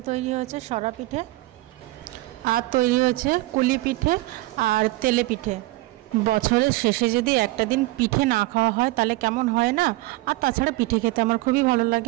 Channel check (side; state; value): left; quieter; 19.7 dB